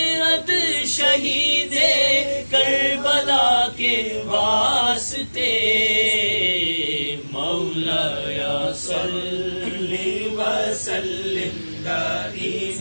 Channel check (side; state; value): both; inverted; correlation -1.00